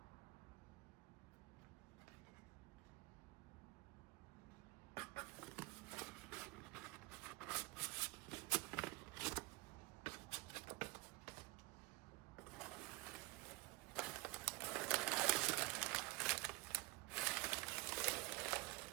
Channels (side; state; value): left; quieter; 22.6 dB